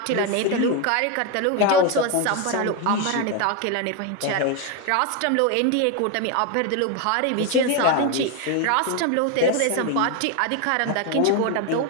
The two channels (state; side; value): different; both; correlation 0.02